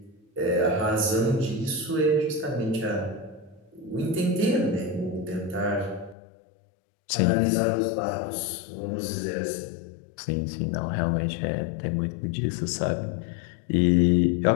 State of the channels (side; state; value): right; drops out; at 6.2 s